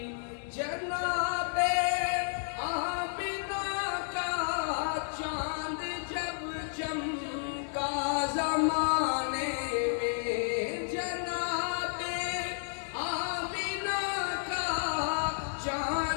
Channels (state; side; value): silent; right; digital silence